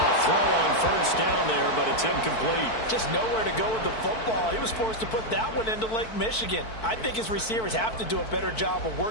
a throw on first down there, but it's incomplete. Just nowhere to go with the football. He was forced to put that one into Lake Michigan. I think his receivers have to do a better job of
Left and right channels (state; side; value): late; right; 4.5 ms